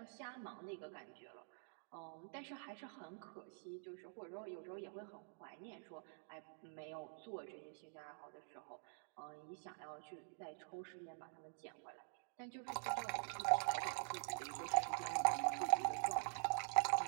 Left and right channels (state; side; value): silent; left; digital silence